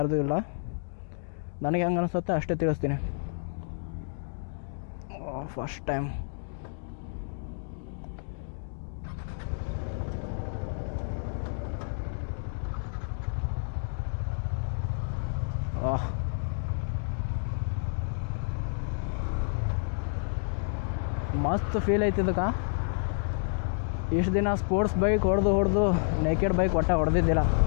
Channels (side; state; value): right; silent; digital silence